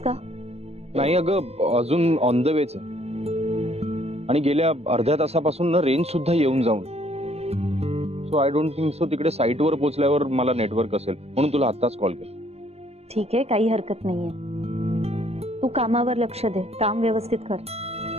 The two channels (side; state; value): left; late; 0.30 ms